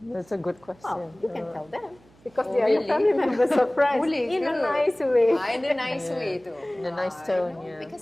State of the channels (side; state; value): right; noise; hum, 29 dB below the sound